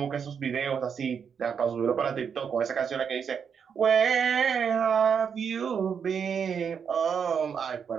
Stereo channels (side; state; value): left; quieter; 7.0 dB